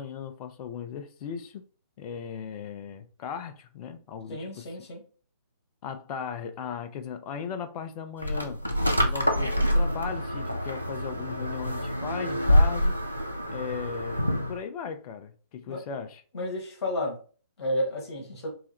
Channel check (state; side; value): inverted; both; correlation -0.79